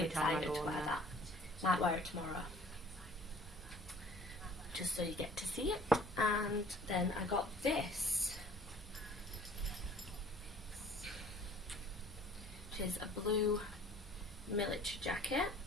time I excited go to on wear there. that. Might wear it tomorrow. Just so you get to see it. And then I got this, which is a blue military jacket.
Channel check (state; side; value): normal; both; correlation 0.52